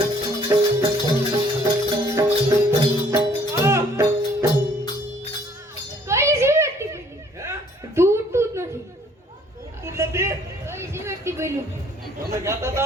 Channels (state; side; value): normal; both; correlation 0.60